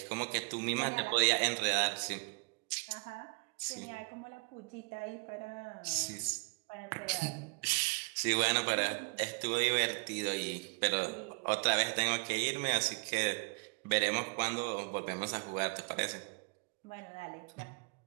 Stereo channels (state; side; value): quieter; left; 33.2 dB